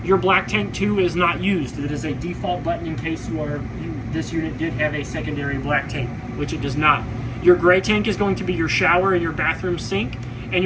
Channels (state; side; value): identical; both; correlation 1.00